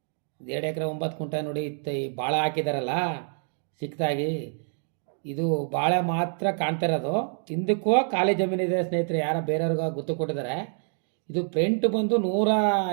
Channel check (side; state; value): left; silent; 57 dB below the other